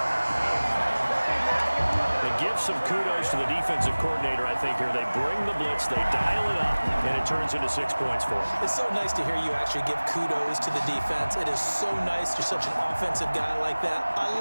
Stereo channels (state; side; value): inverted; both; correlation -1.00